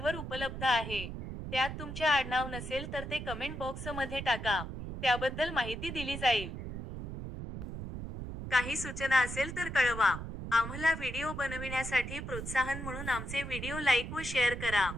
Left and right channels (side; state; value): right; noise; rumble, 7 dB below the sound